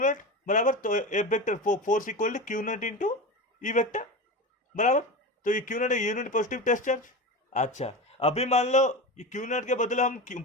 बराबर। तो F vector force equal to Q naught into E vector, बराबर। तो ये क्यू नॉट है यूनिट पॉजिटिव टेस्ट चार्ज। अच्छा, अभी मान लो ये क्यू नॉट के बदले हम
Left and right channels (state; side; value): normal; both; correlation 0.24